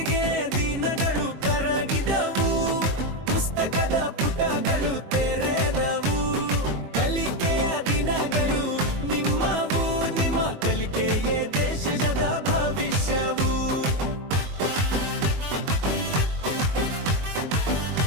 ದಿನಗಳು ಕರಗಿದವು, ಪುಸ್ತಕದ ಪುಟಗಳು ತೆರೆದವು. ಕಲಿಕೆಯ ದಿನಗಳು ನಿಮ್ಮವು, ನಿಮ್ಮ ಕಲಿಕೆಯೇ ದೇಶದ ಭವಿಷ್ಯವು.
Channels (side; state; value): left; late; 21 ms